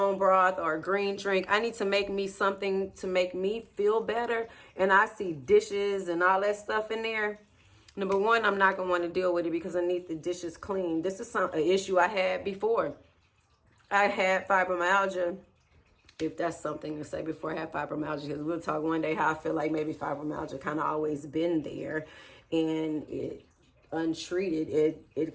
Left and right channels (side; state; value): both; identical; correlation 1.00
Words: broth or a green drink. I need to make me something to make me feel better, and I see dishes and all that stuff in there. Number one, I'm not going to want to deal with it because I need the dishes clean. This is an issue I had before. I had fibromyalgia, if that's something to say, before I had fibromyalgia, because we'll talk one day how I feel like maybe fibromyalgia kind of always been there, and it untreated, it